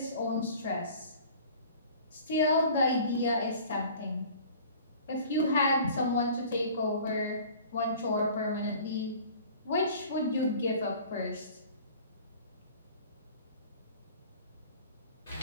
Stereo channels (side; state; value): both; inverted; correlation -0.46